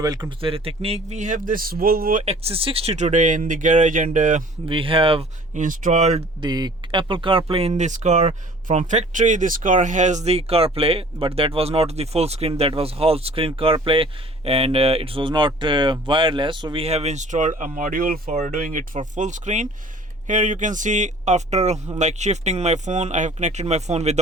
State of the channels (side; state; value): both; normal; correlation 0.49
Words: welcome to the Technique. We have this Volvo XC60 today in the garage, and we have installed the Apple CarPlay in this car. From factory, this car has the CarPlay, but that was not the full screen, that was half screen CarPlay, and it was not wireless. So we have installed a module for doing it for full screen. Here you can see, after shifting my phone, I have connected my phone